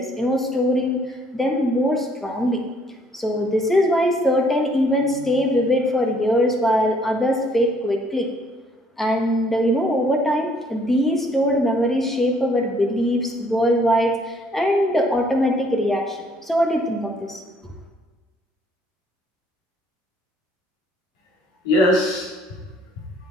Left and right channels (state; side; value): normal; both; correlation 0.63